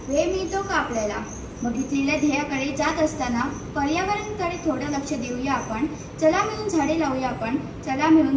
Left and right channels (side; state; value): both; identical; correlation 1.00